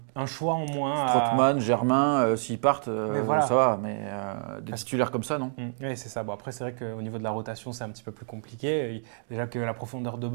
choix en moins. Strootman, Germain, s'ils partent, ça va, mais des titulaires comme ça, non. Oui, c'est ça. Bon, après, c'est vrai qu'au niveau de la rotation, c'est un petit peu plus compliqué. Déjà que la profondeur de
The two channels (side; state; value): left; silent; digital silence